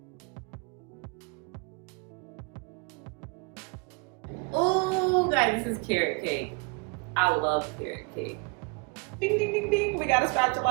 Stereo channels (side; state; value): left; quieter; 31.2 dB